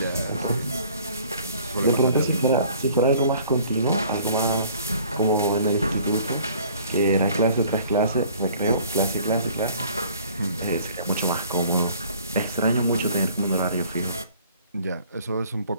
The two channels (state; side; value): inverted; both; correlation -0.54